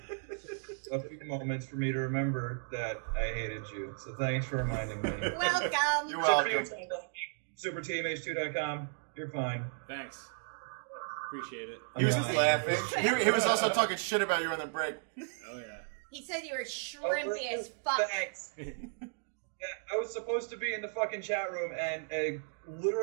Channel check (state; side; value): silent; left; digital silence